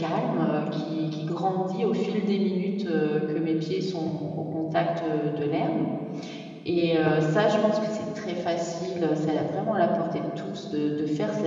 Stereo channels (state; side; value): identical; both; correlation 1.00